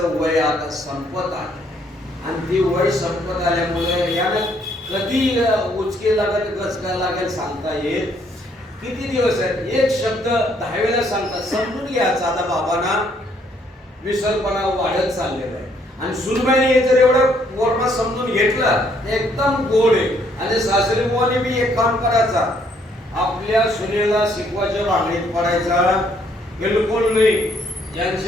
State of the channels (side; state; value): both; normal; correlation 0.68